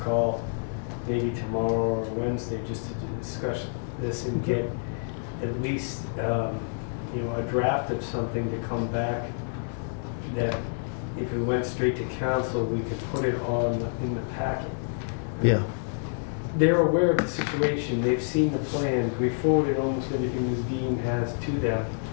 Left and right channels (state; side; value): silent; right; digital silence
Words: maybe tomorrow or Wednesday, just to discuss this and get at least a draft of something to come back that if it went straight to council, we could put it in the packet. Yeah. They're aware of the situation. They've seen the plan. We forwarded almost everything Ms. Dean has to them.